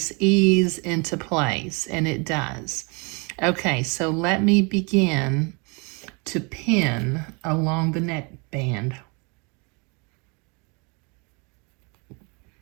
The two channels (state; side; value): quieter; left; 31.5 dB